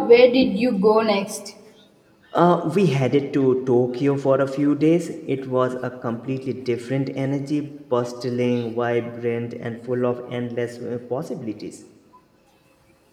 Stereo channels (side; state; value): both; identical; correlation 1.00